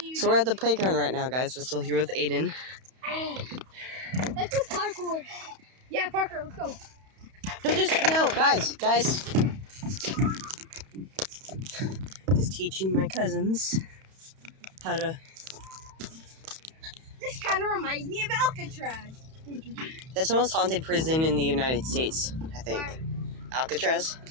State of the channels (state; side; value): late; left; 31 ms